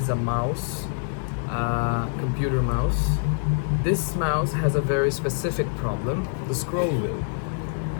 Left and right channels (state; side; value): silent; right; digital silence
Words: a mouse, computer mouse. This mouse has a very specific problem, the scroll wheel.